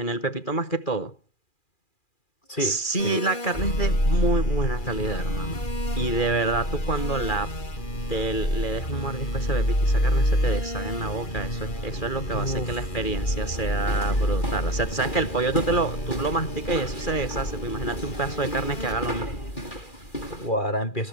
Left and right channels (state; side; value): late; right; 2.4 ms